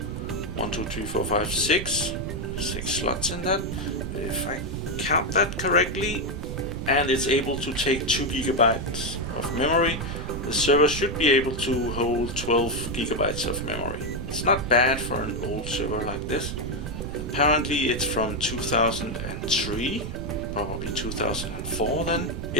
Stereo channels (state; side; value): noise; right; rumble, 6 dB below the sound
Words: 1, 2, 3, 4, 5, 6 slots in that, if I count that correctly, and it's able to take 2 gigabytes of memory. The server should be able to hold 12 gigabytes of memory. It's not bad for an old server like this. Apparently it's from 2003, probably 2004 then.